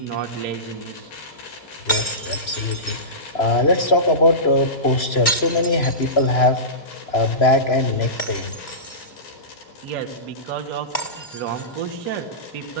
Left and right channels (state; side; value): late; right; 2.5 ms